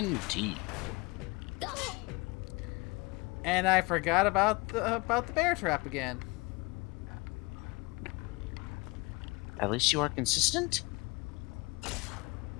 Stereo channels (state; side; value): quieter; right; 25.6 dB